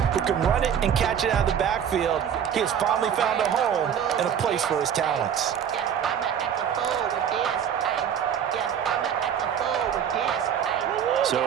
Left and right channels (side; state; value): left; quieter; 8.6 dB